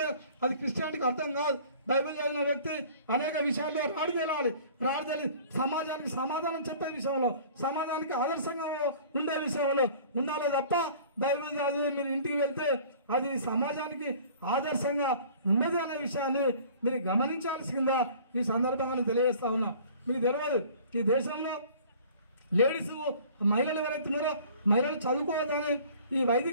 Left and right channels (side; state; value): both; inverted; correlation -0.48